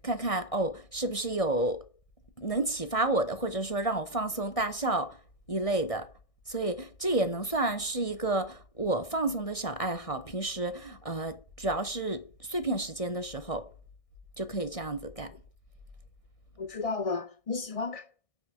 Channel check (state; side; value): late; right; 1.6 ms